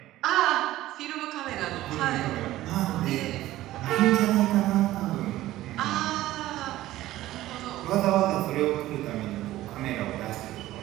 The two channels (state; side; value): quieter; left; 15.4 dB